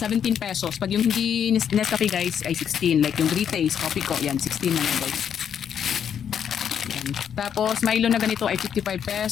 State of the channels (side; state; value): right; quieter; 8.4 dB